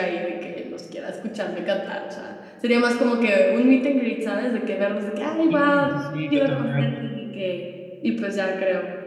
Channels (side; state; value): both; identical; correlation 1.00